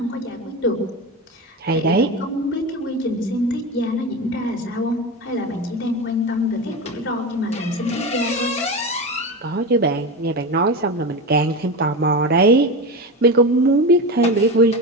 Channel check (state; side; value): normal; both; correlation 0.22